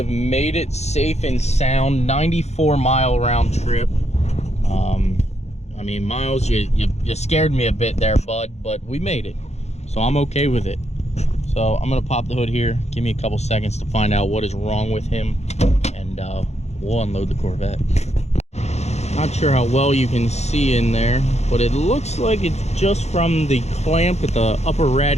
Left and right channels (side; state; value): right; late; 0.32 ms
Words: made it safe and sound. 94-mile round trip. I mean, Miles, you scared me a bit there, bud, but we made it. So I'm okay with it. So I'm gonna pop the hood here. Give me a couple seconds to find out what is wrong with him, and we'll unload the Corvette. Not sure how well you can see in there, but it looks like it's just from the clamp at the upper